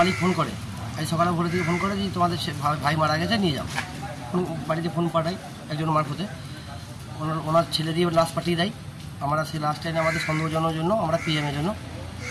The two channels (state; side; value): identical; both; correlation 1.00